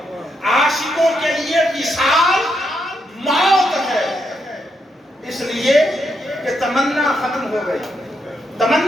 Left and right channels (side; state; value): both; normal; correlation 0.80